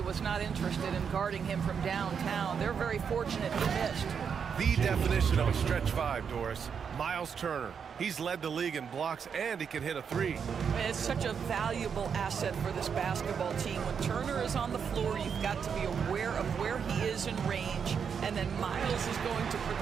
was not interested in guarding him from downtown. They're very fortunate he missed. The definition of a stretch 5, Doris. Miles Turner. He's led the league in blocks, and he can hit a 3. It's such a valuable asset for this basketball team. When Turner is on the floor, you've got to be aware of where he is in range, and then Miles is going to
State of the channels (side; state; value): left; quieter; 6.8 dB